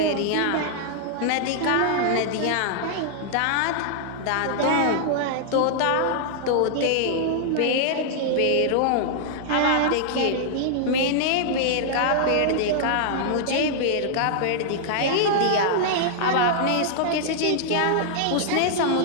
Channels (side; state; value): both; different; correlation -0.01